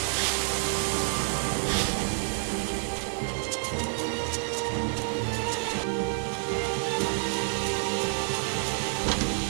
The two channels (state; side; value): silent; left; 59 dB below the other